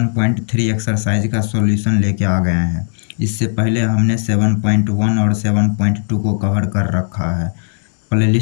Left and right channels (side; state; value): right; silent; digital silence